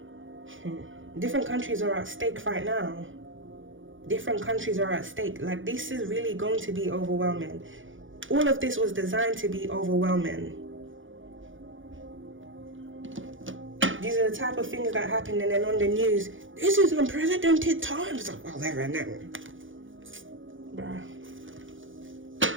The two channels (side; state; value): left; late; 0.57 ms